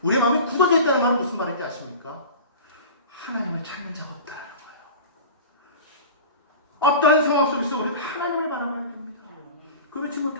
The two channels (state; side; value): inverted; both; correlation -0.36